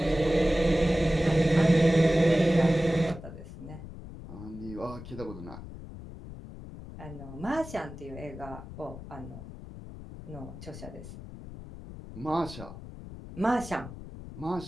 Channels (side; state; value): left; noise; rumble, 13 dB below the sound